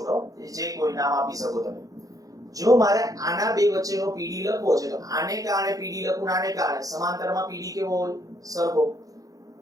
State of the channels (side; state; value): left; late; 0.17 ms